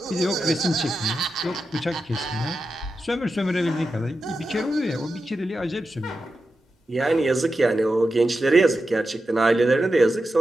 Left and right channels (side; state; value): both; normal; correlation 0.90